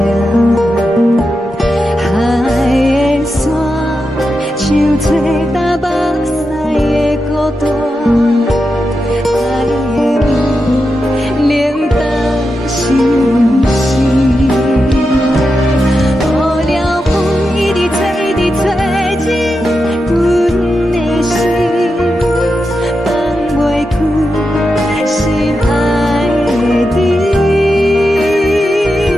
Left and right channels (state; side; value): normal; both; correlation 0.88